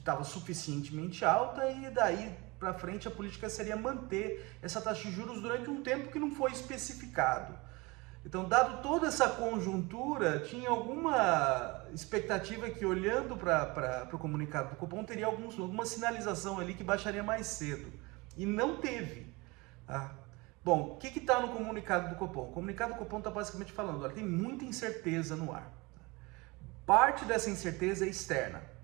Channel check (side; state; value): left; quieter; 24.8 dB